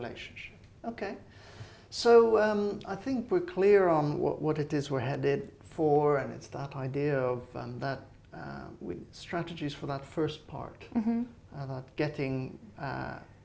Okay. So I think we're clear on what it is we're headed for, and it's that idea of with strategies for that first part, that getting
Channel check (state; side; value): identical; both; correlation 1.00